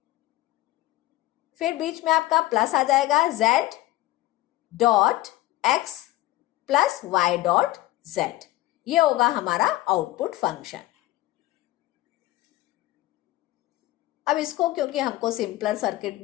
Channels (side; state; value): right; quieter; 17.3 dB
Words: फिर बीच में आपका प्लस आ जाएगा z dot x plus y dot z। ये होगा हमारा आउटपुट फंक्शन। अब इसको क्योंकि हमको सिंपलर सर्किट